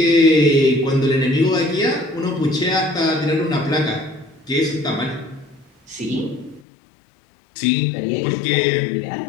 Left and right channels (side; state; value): right; drops out; at 6.6 s